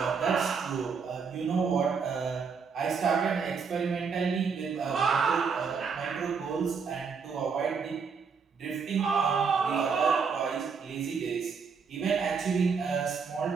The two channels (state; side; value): quieter; left; 5.7 dB